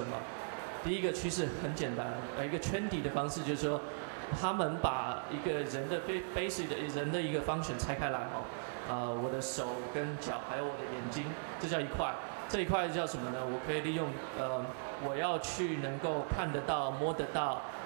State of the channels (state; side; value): silent; left; 52 dB below the other